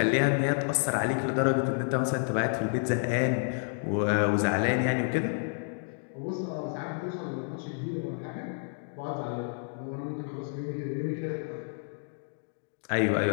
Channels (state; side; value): silent; right; 58 dB below the other